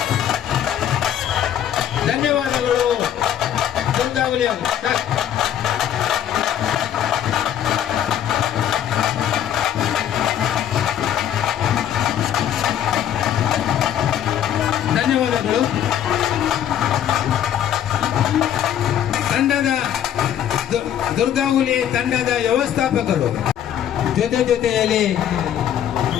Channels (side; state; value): right; quieter; 10.3 dB